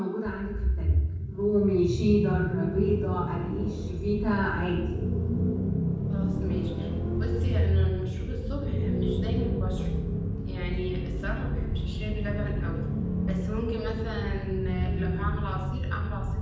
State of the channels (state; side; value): identical; both; correlation 1.00